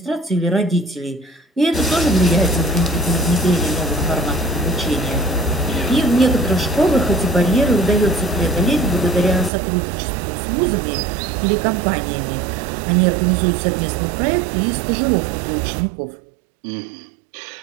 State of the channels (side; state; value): left; drops out; at 9.5 s